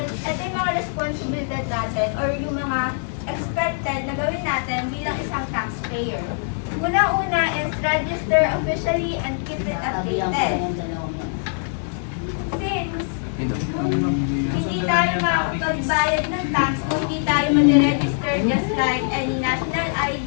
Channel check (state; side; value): silent; right; digital silence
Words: ito yung mga responsibilidad natin or yung mga expected na gawin natin bilang isang taxpayer. Una-una is register officially and keep it updated. Since hindi tayo makapagbayad ng tax kung hindi tayo mag-register just like any national